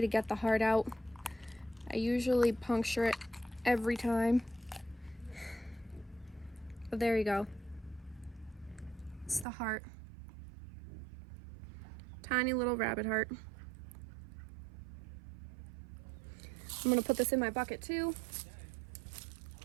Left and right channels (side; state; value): left; drops out; at 9.5 s